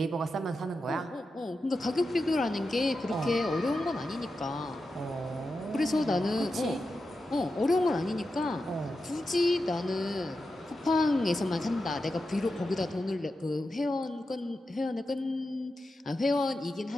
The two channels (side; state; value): both; normal; correlation 0.90